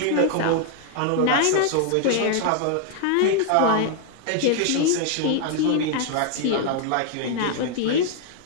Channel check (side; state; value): both; different; correlation 0.00